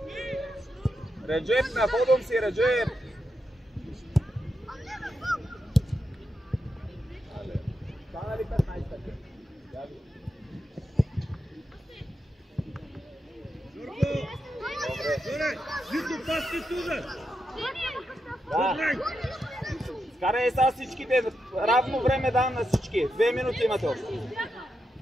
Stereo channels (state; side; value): normal; both; correlation 0.85